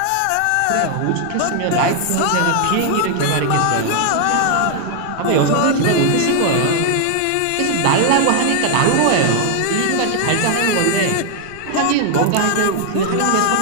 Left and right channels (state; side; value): different; both; correlation 0.00